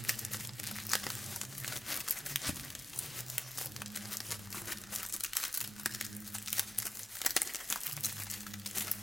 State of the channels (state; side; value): normal; both; correlation 0.96